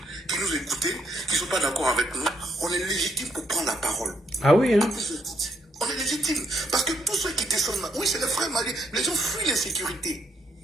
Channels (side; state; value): both; normal; correlation 0.74